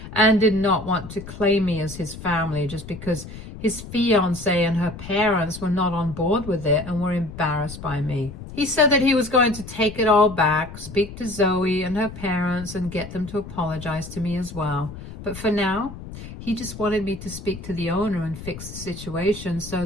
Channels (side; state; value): left; noise; rumble, 12 dB below the sound